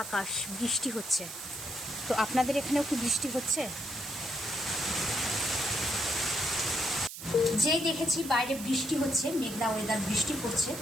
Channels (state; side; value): noise; right; hiss, 10 dB below the sound